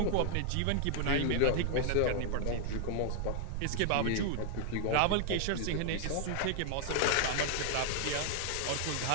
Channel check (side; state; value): both; different; correlation 0.00